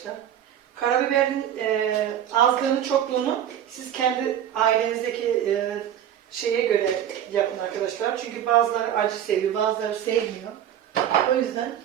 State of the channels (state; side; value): quieter; left; 10.4 dB